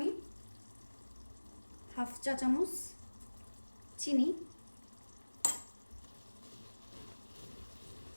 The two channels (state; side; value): inverted; both; correlation -1.00